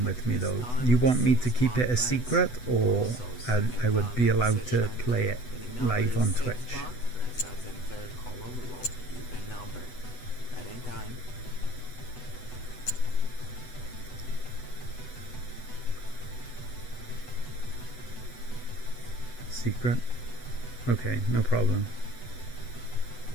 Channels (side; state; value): right; late; 8.1 ms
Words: with me though, you want me to keep it a secret, or I would be allowed to play it live on Twitch? First dozen, third column, low, even number. At any time. Secret? Okay, no problem.